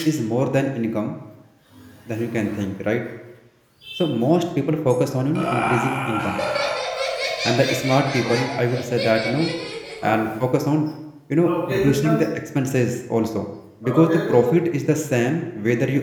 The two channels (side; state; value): both; identical; correlation 1.00